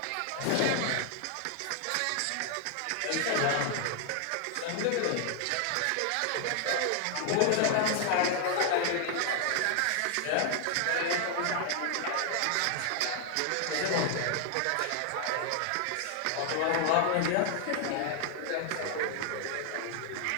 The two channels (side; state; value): both; different; correlation 0.00